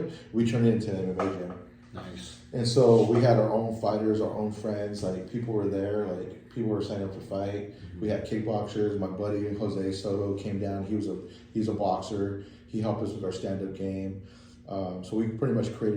We turned it into an MMA gym. Nice. And so we had our own fighters, our own friends. Like people were there. Like people were signing up to fight. We had kickboxers. My buddy Jose Soto came down. He's a boxer. He helped us with our stand-up game. So we pretty much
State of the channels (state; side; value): identical; both; correlation 1.00